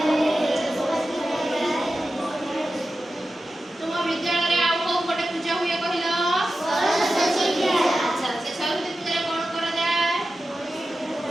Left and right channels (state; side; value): normal; both; correlation 0.93